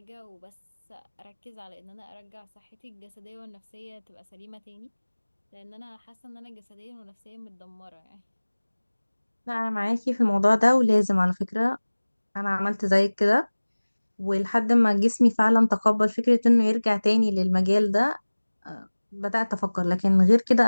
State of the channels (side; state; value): both; inverted; correlation -1.00